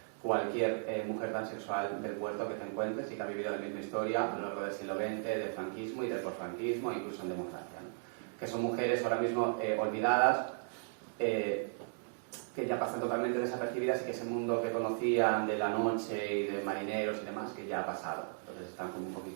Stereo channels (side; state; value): left; silent; digital silence